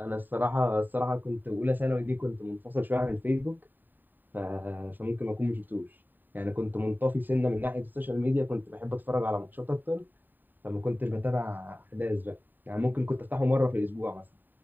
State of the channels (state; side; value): late; left; 0.090 ms